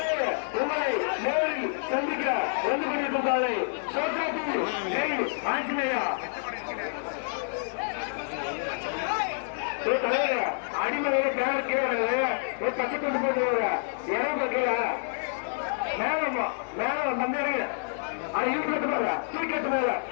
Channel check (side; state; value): right; silent; 59 dB below the other